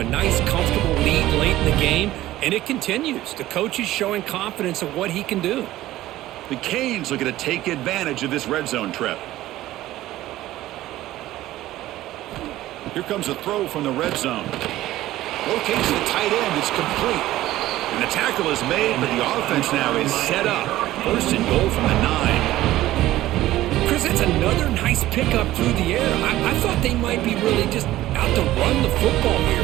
nice, comfortable lead late in the game, and it continues. The coach is showing confidence of what he can do. The Canes looking to take advantage of this red zone trip. Here comes a throw from the red zone. Locates the tight end. It's complete. And the tackle is made, but the offense now is set up. First and goal from the 9. Chris, that's another nice pickup through the air. I thought they might be really just out to run the football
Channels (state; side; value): quieter; left; 15.3 dB